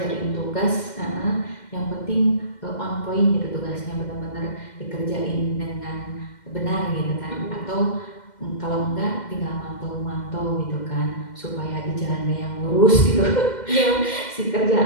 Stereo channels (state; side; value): late; right; 2.1 ms